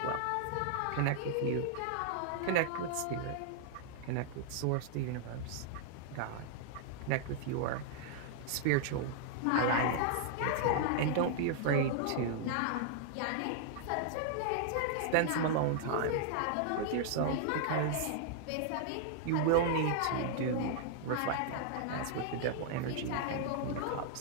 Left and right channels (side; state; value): both; different; correlation -0.01